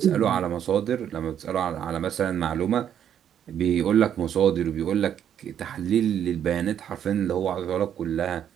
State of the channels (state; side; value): quieter; left; 9.4 dB